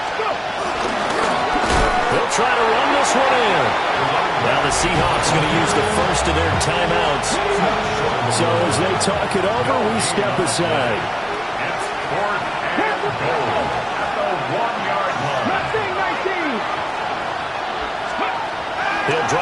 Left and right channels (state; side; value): identical; both; correlation 1.00